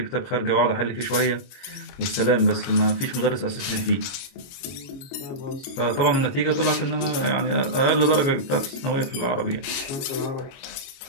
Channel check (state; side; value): late; right; 22 ms